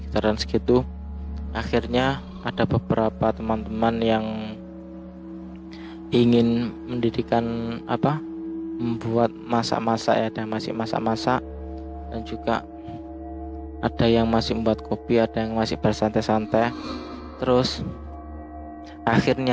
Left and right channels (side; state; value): both; identical; correlation 1.00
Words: segitu. Akhirnya ada beberapa teman-teman yang ingin mendirikan membuat masak-masak ya, ada masih masak-masak, dan juga ada yang masih membuat kopi, ada yang masih bersantai-santai. Terus